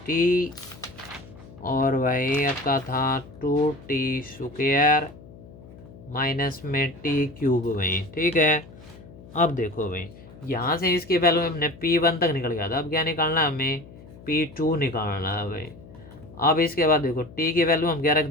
और भाई आपका था 2t स्क्वायर माइनस में t³ भाई, ठीक है। अब देखो भाई यहाँ से इसकी वैल्यू हमने P1 तक निकल गया था, अब क्या निकालना है हमें P2 निकालना है भाई। अब इसके बाद देखो t की वैल्यू हम क्या रख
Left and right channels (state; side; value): noise; left; hum, 19 dB below the sound